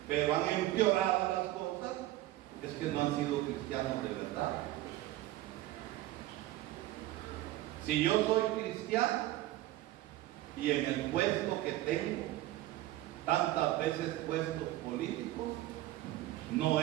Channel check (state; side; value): quieter; left; 15.9 dB